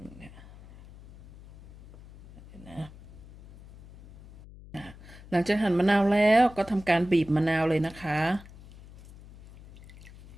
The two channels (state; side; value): noise; left; hum, 20 dB below the sound